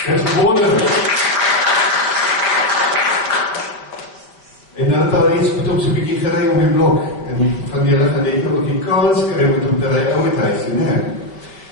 Dit is wonderlik. En dan het daar iets met hom so 'n bietjie gery om die blok, en van julle gaan net ook die kans kry met hom te ry ouer huis, nee.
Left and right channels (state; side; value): late; right; 5.0 ms